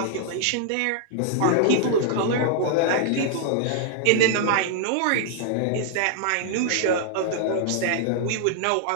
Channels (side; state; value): both; different; correlation -0.01